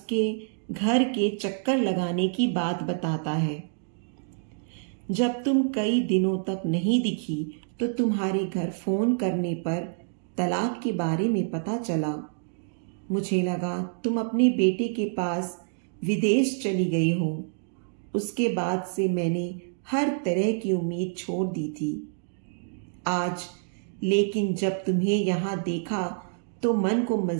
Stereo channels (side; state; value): left; silent; digital silence